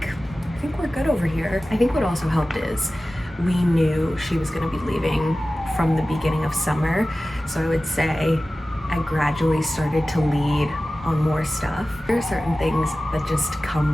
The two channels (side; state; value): both; normal; correlation 0.96